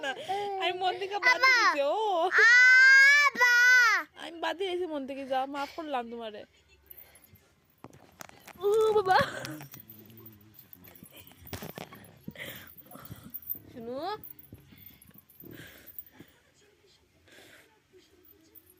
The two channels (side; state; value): both; identical; correlation 1.00